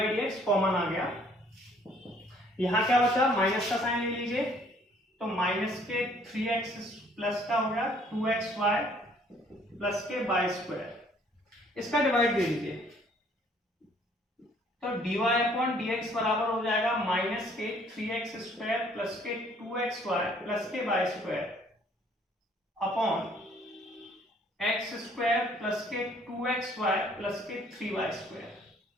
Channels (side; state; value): both; normal; correlation 0.60